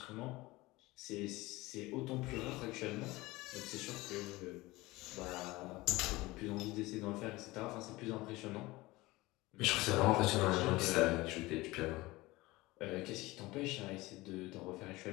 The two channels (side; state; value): right; quieter; 20.5 dB